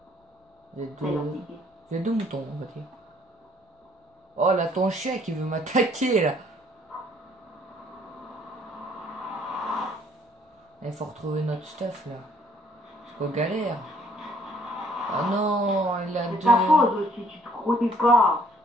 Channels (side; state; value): both; normal; correlation 0.62